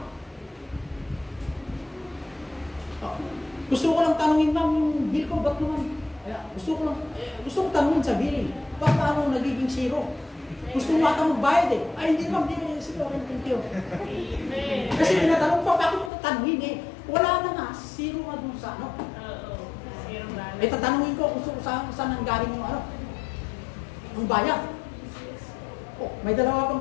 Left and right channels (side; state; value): right; drops out; at 16.1 s